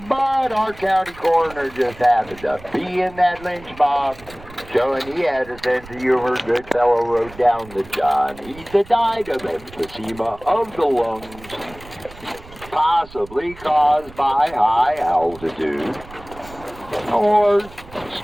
But our county coroner just happened to be in that lynch mob, showing he had a sense of humor. Goodfellow wrote down that John Heath had died of emphysema of the lungs, possibly caused by high altitude or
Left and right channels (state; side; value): noise; right; rumble, 19 dB below the sound